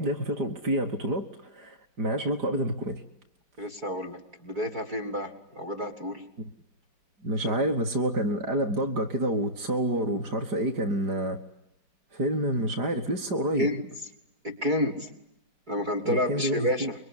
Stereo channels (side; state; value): left; late; 4.9 ms